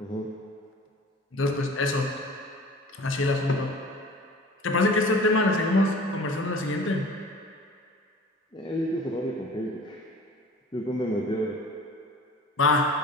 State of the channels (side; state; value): both; normal; correlation 0.44